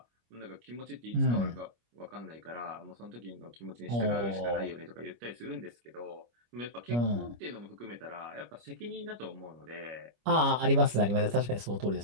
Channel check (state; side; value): late; left; 25 ms